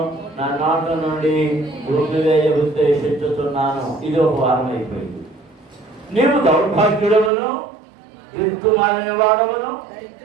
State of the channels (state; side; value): drops out; left; at 7.3 s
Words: నా నోట నుండి ఊపివేయ ఉద్దేశించుతున్నాను. ఇది ఒక వారం అయిపోయింది. నీవు దౌర్భాగ్యుడవును, దిక్కుమాలిన వాడవును,